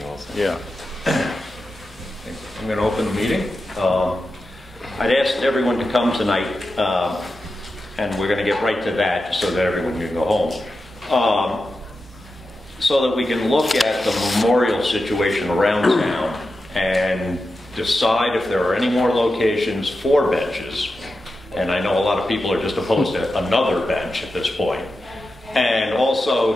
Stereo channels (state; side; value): normal; both; correlation 0.91